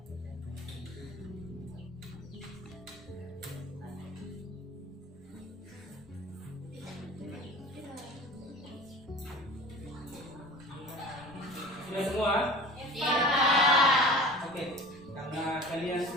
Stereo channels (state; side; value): normal; both; correlation 0.40